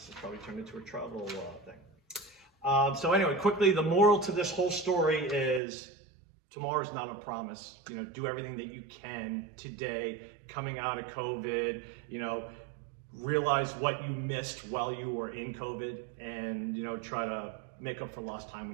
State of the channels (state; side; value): drops out; left; at 5.6 s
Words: has probably turned into a travel thing. So anyway, quickly, the moral to this whole story is tomorrow's not a promise. You know, do everything that you can today, coming out of COVID, you know, realize what you missed while you were in COVID and, you know, try to make up for lost time